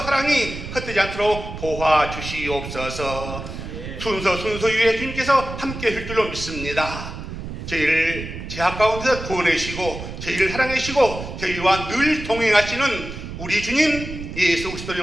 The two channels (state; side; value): noise; right; rumble, 9 dB below the sound